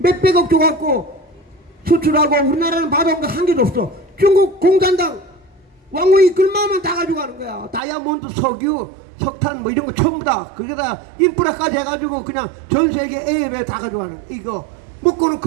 줘갖고 수출하고 우리나라는 받아온 거 한 개도 없어. 중국 공산당 왕후이 글마만 다 가져가는 거야. 다이아몬드, 석유, 석탄 뭐 이런 거 전부 다. 그게다 인프라까지 해가지고 그냥 전 세계 A협에 다 가져가는 거야. 이거 먹고는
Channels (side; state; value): left; drops out; at 7.8 s